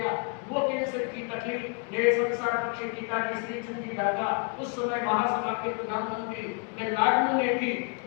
वो कैंसर की तकलीफ मेरे संसार पक्षी पिताजी श्री चंद जी दादा उस समय महासभा के प्रधानमंत्री मैं लाडनू में थी।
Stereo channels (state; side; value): quieter; right; 37.1 dB